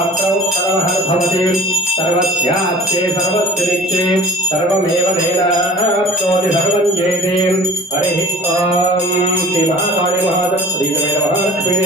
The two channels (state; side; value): normal; both; correlation 0.43